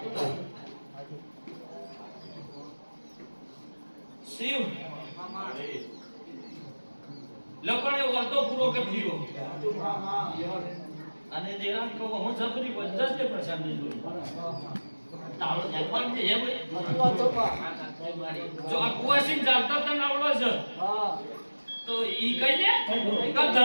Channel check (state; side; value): inverted; both; correlation -1.00